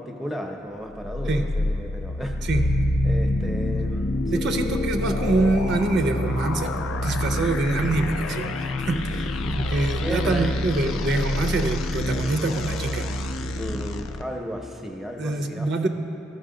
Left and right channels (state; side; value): normal; both; correlation 0.78